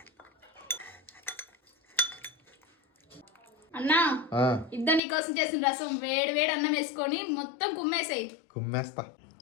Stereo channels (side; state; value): right; drops out; at 5.0 s